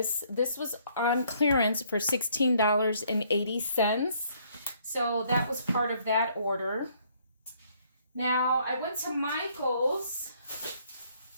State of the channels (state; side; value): inverted; both; correlation -0.65